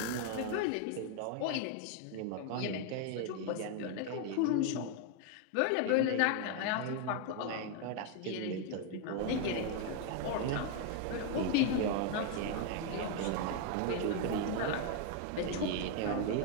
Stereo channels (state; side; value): different; both; correlation 0.01